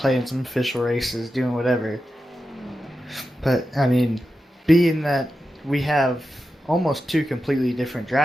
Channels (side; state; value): both; normal; correlation 0.90